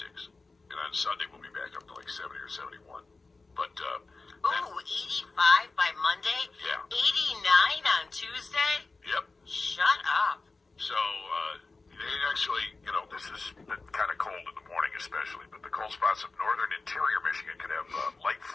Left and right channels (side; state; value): right; quieter; 3.7 dB